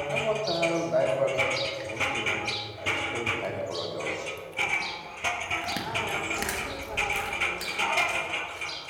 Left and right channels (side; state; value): both; identical; correlation 1.00